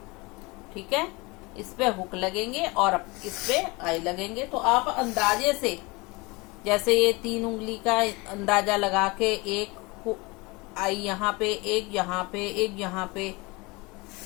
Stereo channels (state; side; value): quieter; right; 25.3 dB